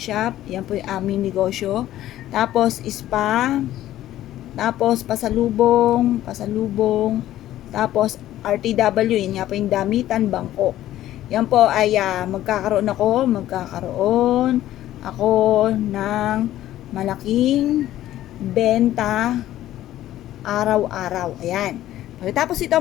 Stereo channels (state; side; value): quieter; right; 13.6 dB